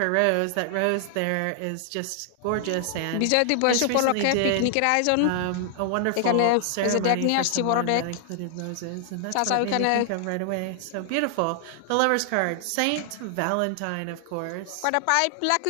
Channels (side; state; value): both; different; correlation 0.00